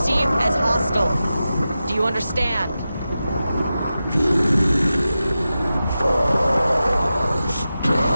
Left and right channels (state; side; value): inverted; both; correlation -0.92